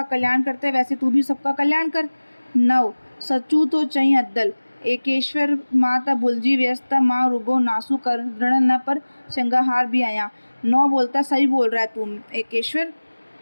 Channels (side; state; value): both; inverted; correlation -1.00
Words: कल्याण करते हैं, वैसे तू भी सबका कल्याण कर। 9 सचू तो चईं अदल, एकेश्वर मां त भुलिजी वियसि त मां रुगो नासू करण न पर श्रृंगार भी आहियां। 9 बोलता सही बोल रहा है तू एकेश्वर,